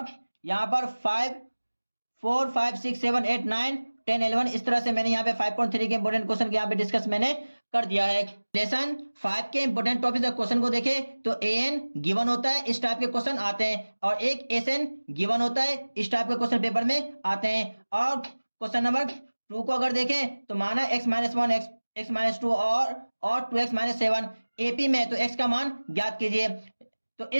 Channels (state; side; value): inverted; both; correlation -1.00